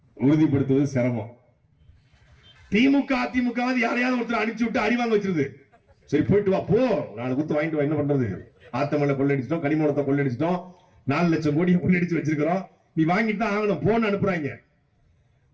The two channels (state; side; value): identical; both; correlation 1.00